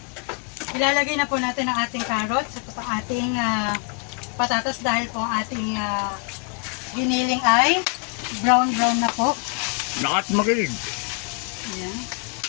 Ilalagay na po natin ang ating carrots at ang ating patatas dahil po ang ating giniling ay brown na po. Lakat magaling. Ayan.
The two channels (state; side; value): quieter; right; 35.7 dB